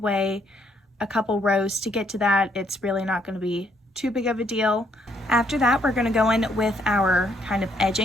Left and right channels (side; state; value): both; normal; correlation 0.71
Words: a couple rows to get to that. It's really not going to be too big of a deal. After that, we're going to go in with our kind of